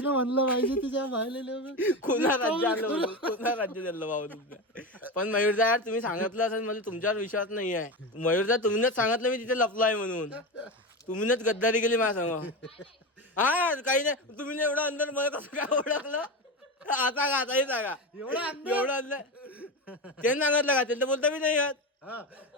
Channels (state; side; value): normal; both; correlation 0.20